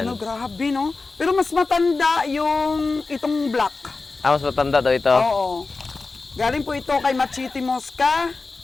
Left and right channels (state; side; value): quieter; right; 3.8 dB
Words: no, grabe, no? Pero mas matanda yung itong black. Mas matanda daw ito. Oo. Galing po ito kay Machiti Mosca.